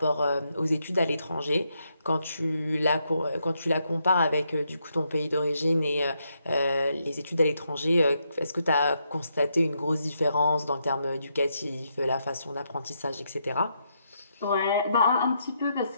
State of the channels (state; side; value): inverted; both; correlation -0.79